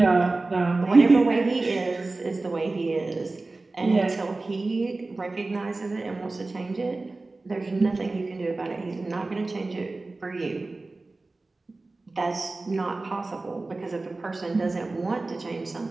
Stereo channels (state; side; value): quieter; left; 3.3 dB